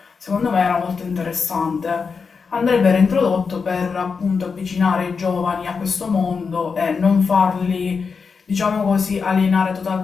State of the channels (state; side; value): quieter; right; 5.3 dB